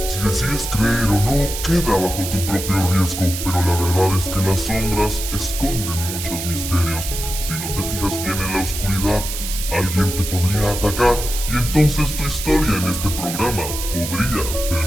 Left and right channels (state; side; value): noise; right; hiss, 6 dB below the sound